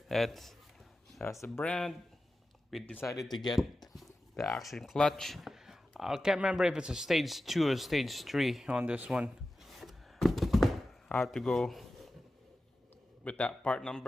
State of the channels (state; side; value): normal; both; correlation 0.93